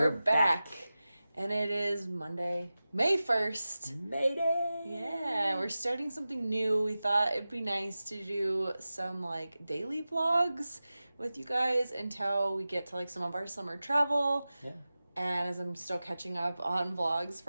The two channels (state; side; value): inverted; both; correlation -0.95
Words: back. And it is Monday, May 1st. Mayday! Yeah, we're starting something new. We thought it'd be nice to do some like daily vlogs with you guys until we get to like some of our summer travel. Yeah. And as I'm still catching up on vlogs